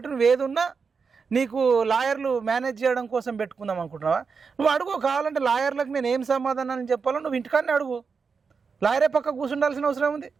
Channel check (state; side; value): quieter; left; 5.4 dB